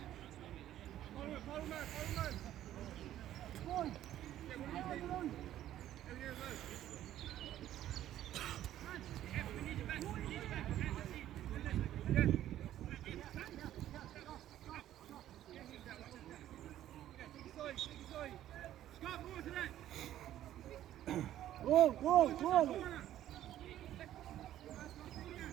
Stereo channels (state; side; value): quieter; left; 12.5 dB